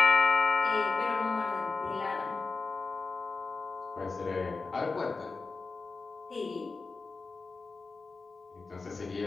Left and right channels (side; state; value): right; quieter; 4.1 dB